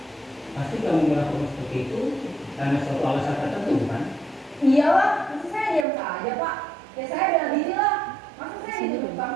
Pasti kamu melakukan seperti itu karena suatu alasan tertentu kan? Iya lah, masa saya diam saja Pak. Ya saya bela diri lah. Masa saya dituduh tukang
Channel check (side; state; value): left; drops out; at 5.9 s